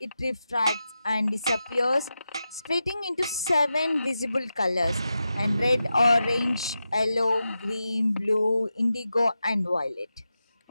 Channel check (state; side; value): inverted; both; correlation -0.91